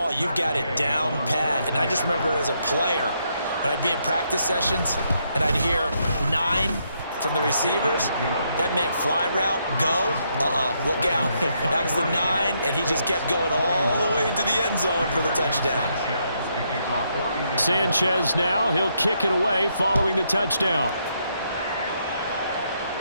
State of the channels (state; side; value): inverted; both; correlation -0.76